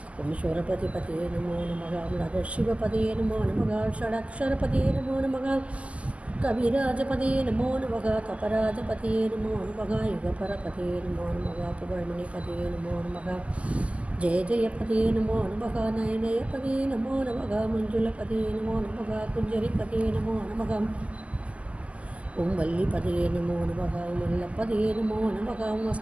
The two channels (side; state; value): left; late; 0.064 ms